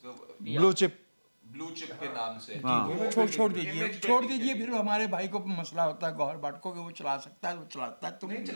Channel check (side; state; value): both; inverted; correlation -1.00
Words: بلو چپ ब्लू चिप के नाम से छोड़ दीजिए फिर हमारे भाई को मसला होता है गौहर भट्ट को कि वो चला सकता है, वो चलाता है, तुम नहीं